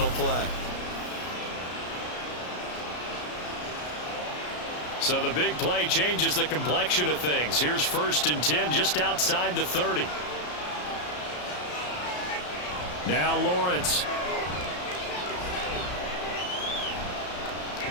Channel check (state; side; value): late; right; 33 ms